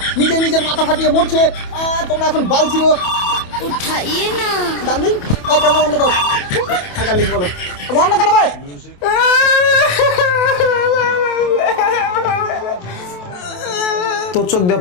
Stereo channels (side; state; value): right; late; 28 ms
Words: নিজের মাথা ফাটিয়ে মরছে। তোমরা এখন বাল ছিল उठाइए ना। ডার্লিং। ওই কেমন বন্ধ কর। ডার্লিং বলো বন্ধ কেন ভাই? তোর চোখ দিয়ে